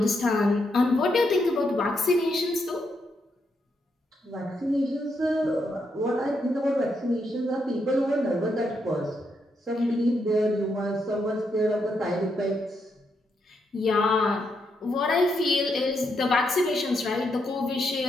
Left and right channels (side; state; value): both; normal; correlation 0.80